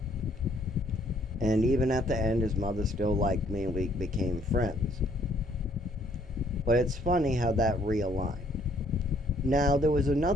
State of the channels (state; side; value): normal; both; correlation 0.64